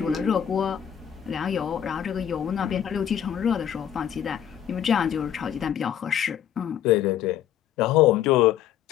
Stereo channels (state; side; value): quieter; right; 9.8 dB